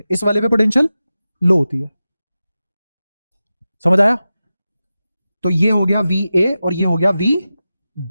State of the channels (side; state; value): both; inverted; correlation -0.93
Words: इस वाले पे पोटेंशियल लो होती है। समझ आया? तो ये हो गया वी ए और ये हो गया वी